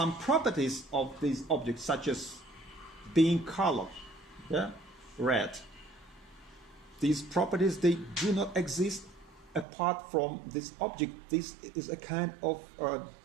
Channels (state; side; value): drops out; left; at 9.7 s